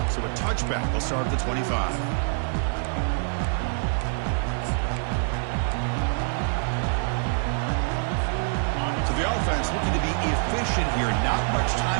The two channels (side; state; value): left; silent; 61 dB below the other